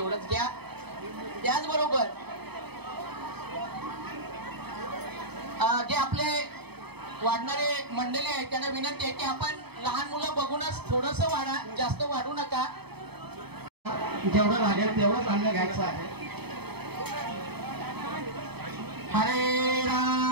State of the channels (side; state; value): left; late; 0.98 ms